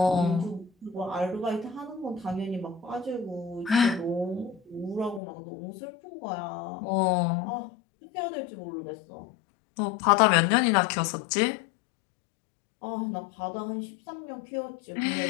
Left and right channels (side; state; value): right; drops out; at 5.2 s